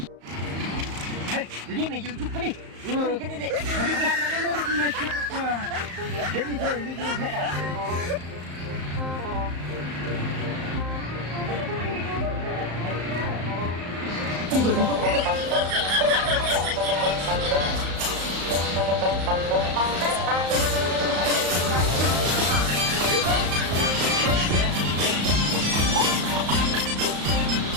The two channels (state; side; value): late; left; 34 ms